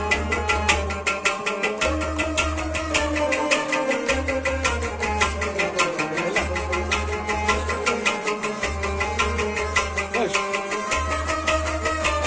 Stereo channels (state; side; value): identical; both; correlation 1.00